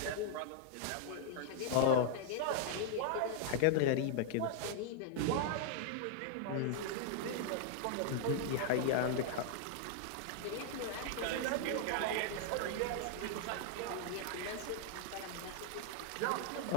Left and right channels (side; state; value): both; different; correlation -0.01